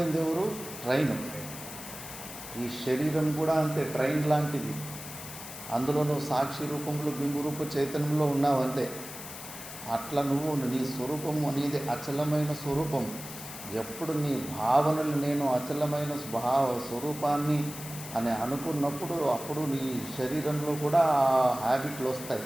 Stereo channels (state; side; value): noise; left; hiss, 11 dB below the sound